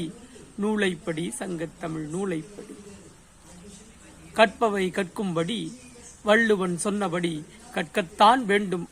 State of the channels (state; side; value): identical; both; correlation 1.00